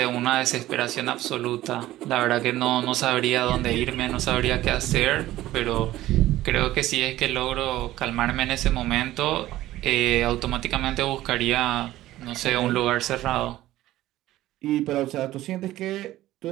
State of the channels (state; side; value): quieter; left; 15.3 dB